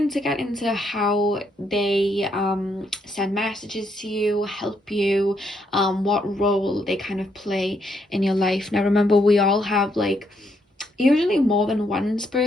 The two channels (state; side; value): normal; both; correlation 0.75